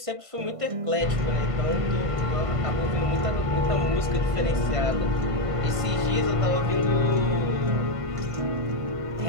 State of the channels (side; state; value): left; late; 1.5 ms